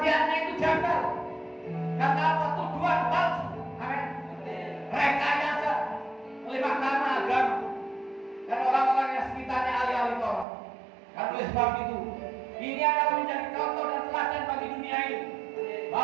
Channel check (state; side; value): drops out; left; at 10.5 s